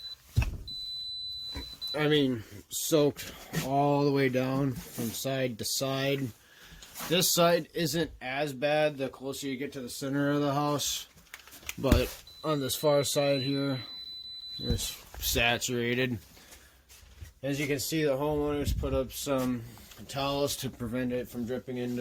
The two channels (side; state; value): both; identical; correlation 1.00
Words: I mean, soaked all the way down from side to side. This side isn't as bad the closer you get to the center of the house, but on this far side here, it's saturated. As you can see, the homeowners put up some towels to prevent it from dripping